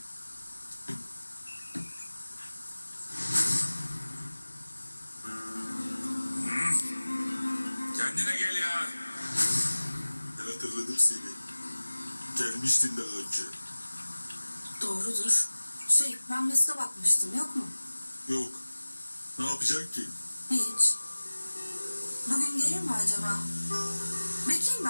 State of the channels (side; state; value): both; inverted; correlation -1.00